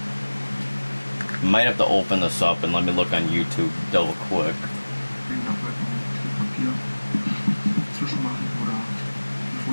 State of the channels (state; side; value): inverted; both; correlation -1.00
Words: Might have to open this up and let me look on YouTube double quick.